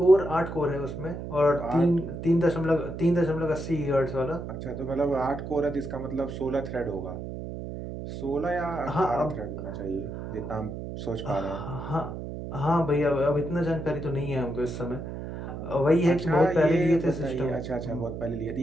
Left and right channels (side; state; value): right; noise; hum, 8 dB below the sound